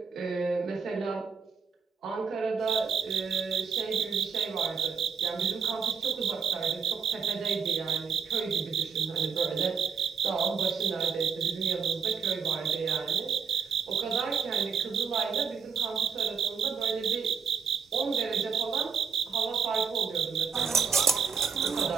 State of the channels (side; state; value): left; quieter; 6.3 dB